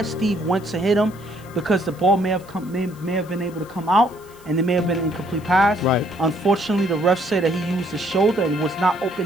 Steve went to hit him, because the ball may have been able to come out, and it may have been an incomplete pass. Right. Unfortunately, the ref said that he used his shoulder and was not open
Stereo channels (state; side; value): noise; left; hiss, 25 dB below the sound